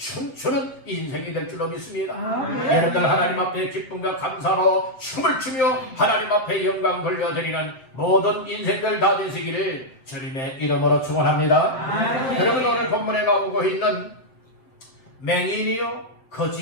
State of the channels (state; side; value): late; right; 7.7 ms